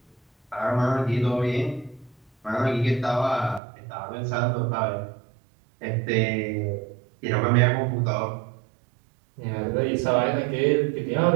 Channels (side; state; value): left; drops out; at 3.6 s